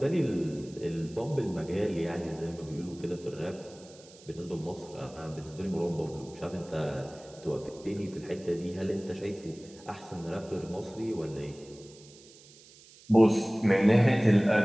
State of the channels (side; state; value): right; noise; hiss, 23 dB below the sound